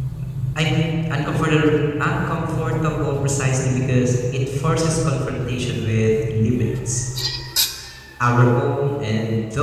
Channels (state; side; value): identical; both; correlation 1.00